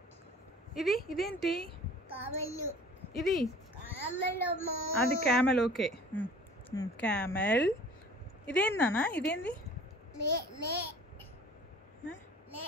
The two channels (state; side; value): normal; both; correlation 0.47